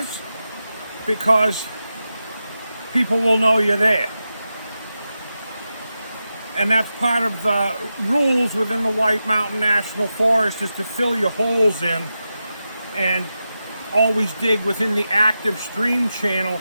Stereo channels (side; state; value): both; inverted; correlation -0.90